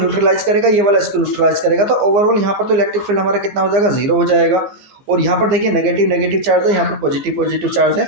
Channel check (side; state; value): left; late; 15 ms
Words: करेगा, ये वाला इसको न्यूट्रलाइज करेगा, तो ओवरऑल यहाँ पर तो इलेक्ट्रिक फील्ड हमारा कितना हो जाएगा, 0 हो जाएगा। और यहाँ पर देखिए नेगेटिव चार्ज है, यहाँ पर पॉजिटिव चार्ज है,